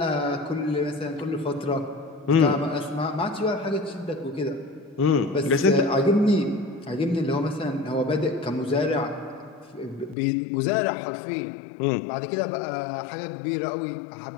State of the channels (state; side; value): drops out; right; at 10.2 s